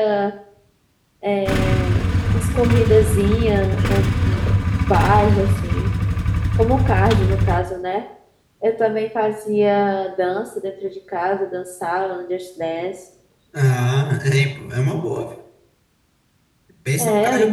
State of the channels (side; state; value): both; identical; correlation 1.00